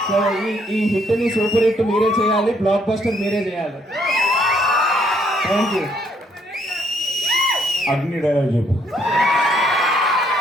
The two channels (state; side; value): normal; both; correlation 0.69